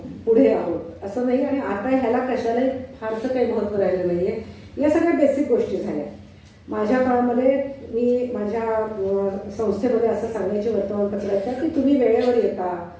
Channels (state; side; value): identical; both; correlation 1.00